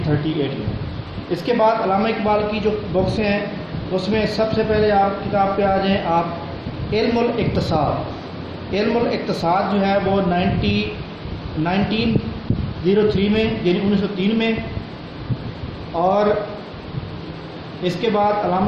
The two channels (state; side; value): identical; both; correlation 1.00